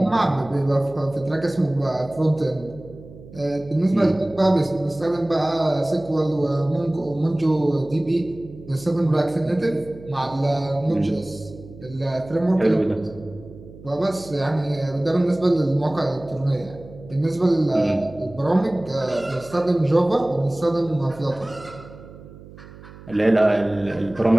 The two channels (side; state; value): right; noise; hum, 18 dB below the sound